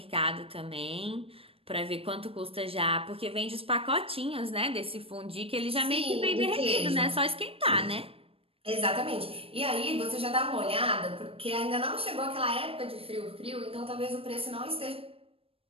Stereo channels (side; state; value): left; late; 0.27 ms